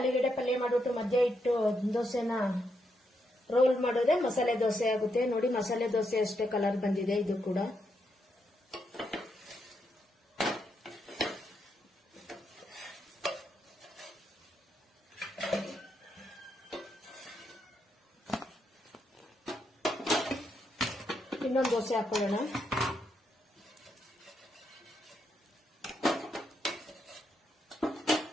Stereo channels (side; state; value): both; normal; correlation 0.80